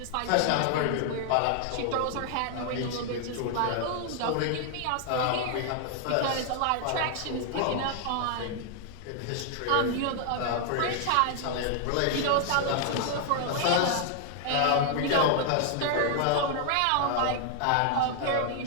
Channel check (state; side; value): different; both; correlation 0.00